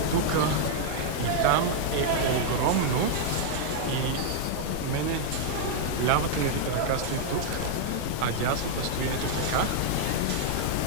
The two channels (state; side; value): different; both; correlation -0.01